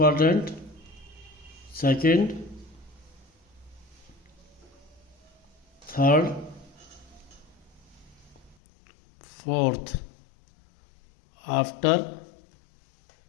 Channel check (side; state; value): right; drops out; at 8.6 s